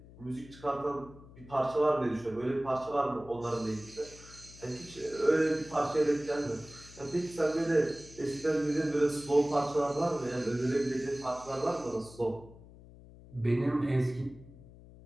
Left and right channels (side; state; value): left; noise; hum, 20 dB below the sound